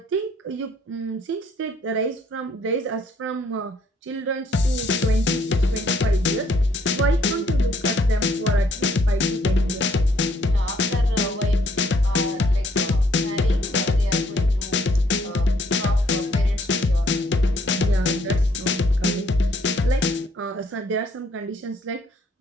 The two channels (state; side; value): normal; both; correlation 0.66